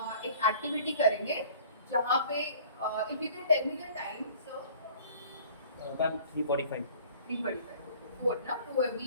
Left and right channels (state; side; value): inverted; both; correlation -0.50